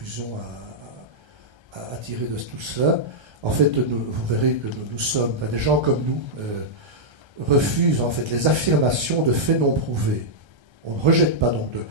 à tirer de tout cela. En fait, vous verrez que nous sommes, des gens comme nous, refusent en fait les affirmations de faits non prouvés. On ne rejette pas donc de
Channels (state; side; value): late; left; 1.3 ms